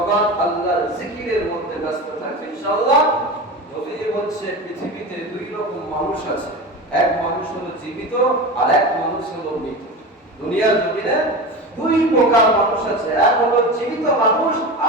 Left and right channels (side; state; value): both; normal; correlation 0.27